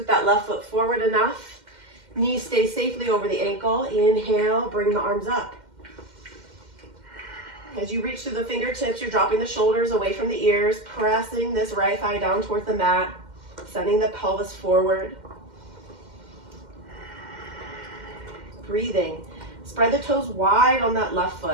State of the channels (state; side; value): late; left; 2.1 ms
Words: that left foot forward enough. Knees stay safely over the ankle. Inhale, bring the arms up. As you reach through the fingertips, you're dropping the shoulders away from the ears, pressing this right thigh down towards the mat, sending the pelvis forward. Breathing. Spread the toes wide on that left